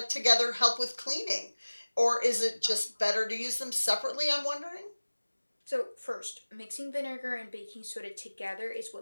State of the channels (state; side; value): inverted; both; correlation -1.00